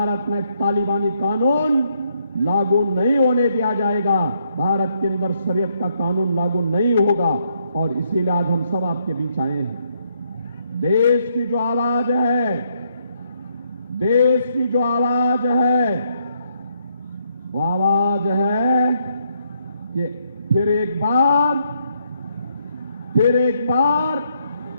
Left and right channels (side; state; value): both; inverted; correlation -0.74